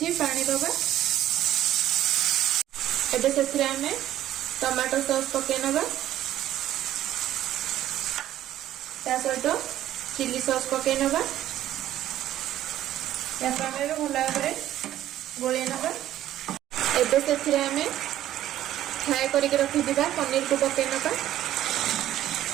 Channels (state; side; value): quieter; left; 12.8 dB